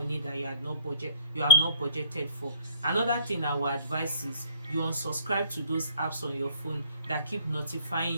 that you have not budgeted for. Another thing I will advise is you unsubscribe to those apps on your phone that keep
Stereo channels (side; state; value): both; inverted; correlation -0.59